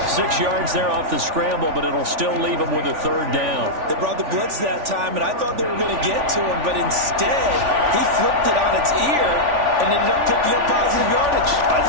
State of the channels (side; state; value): left; late; 3.4 ms